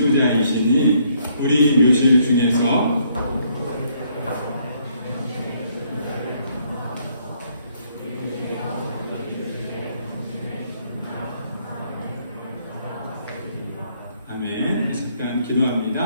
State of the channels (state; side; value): inverted; both; correlation -0.69